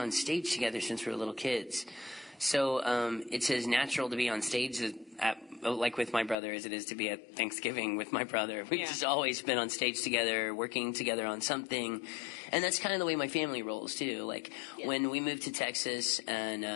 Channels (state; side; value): drops out; right; at 6.4 s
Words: stage together since we were little kids. So it's as natural to be on stage like with my brother as it is to be at Thanksgiving with my brother. We've just always been on stage together, working together on something. And that's kind of the way my family rolls too. Like when we moved to Texas and